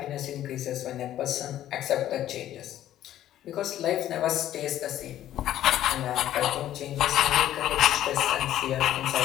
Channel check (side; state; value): right; quieter; 12.4 dB